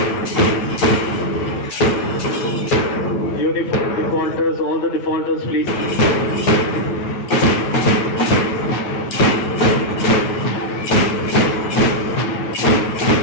uniform defaulters, all the defaulters, please.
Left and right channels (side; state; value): right; late; 8.9 ms